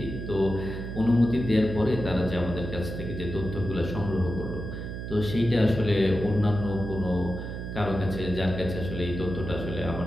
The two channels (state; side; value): noise; right; hum, 7 dB below the sound